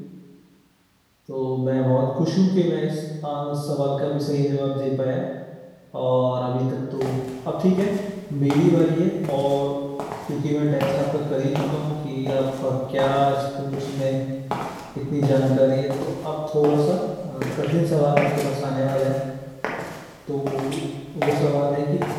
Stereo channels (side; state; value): both; identical; correlation 1.00